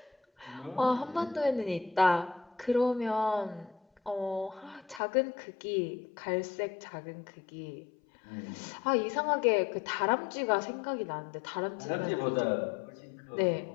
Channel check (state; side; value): drops out; right; at 5.0 s